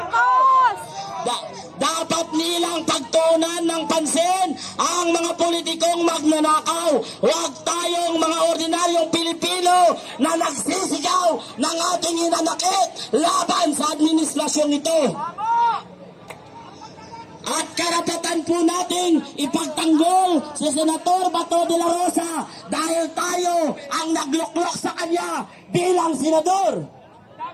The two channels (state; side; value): identical; both; correlation 1.00